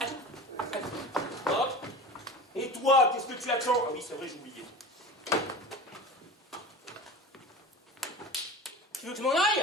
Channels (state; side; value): normal; both; correlation 0.34